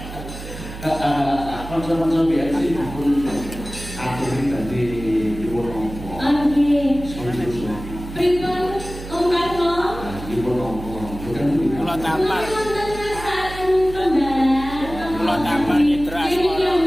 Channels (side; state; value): right; noise; hum, 11 dB below the sound